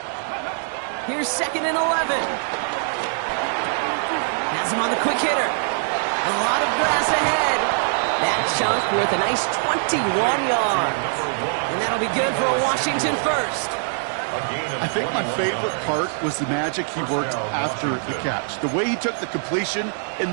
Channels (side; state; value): left; silent; digital silence